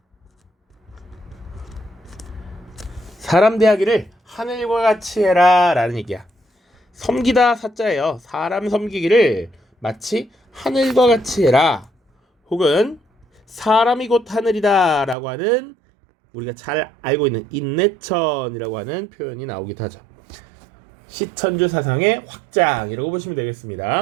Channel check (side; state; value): left; drops out; at 15.2 s